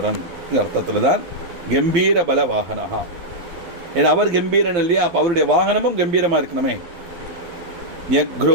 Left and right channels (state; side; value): late; left; 12 ms